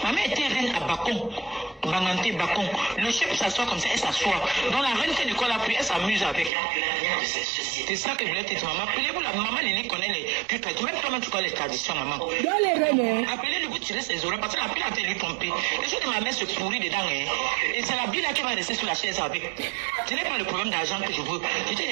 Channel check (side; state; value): left; drops out; at 6.5 s